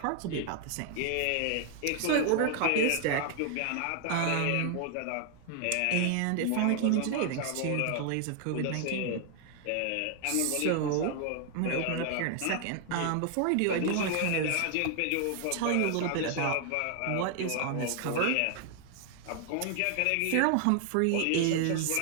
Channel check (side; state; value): both; different; correlation 0.00